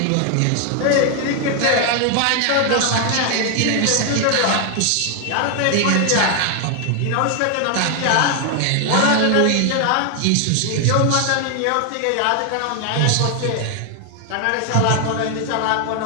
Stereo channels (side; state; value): both; different; correlation 0.00